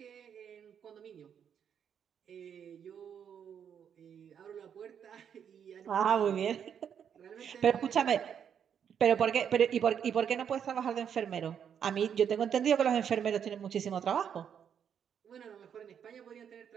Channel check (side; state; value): left; quieter; 8.1 dB